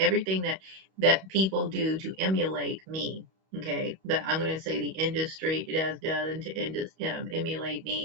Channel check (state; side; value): late; left; 31 ms